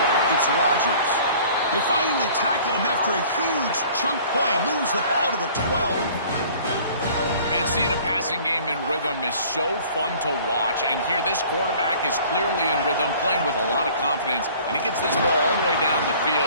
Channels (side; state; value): both; inverted; correlation -0.50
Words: it's Rodgers. They finally tackle him after a huge chunk play. Moves the ball to the 12. Man, seeing a passing game in rhythm is so fun to watch. And here, this quarterback is clearly in rhythm, playing with a lot of confidence. And he gets this ball all the way down the